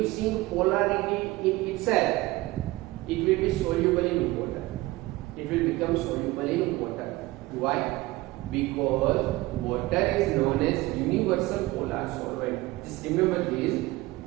polarity in itself, it will be soluble in water. It will become soluble in water. Why? Because water is known as universal polar solvent. Just remember this.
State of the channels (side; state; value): left; quieter; 19.7 dB